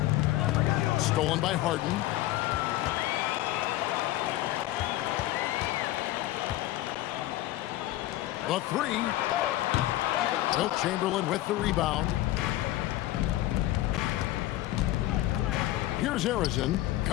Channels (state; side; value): quieter; right; 15.7 dB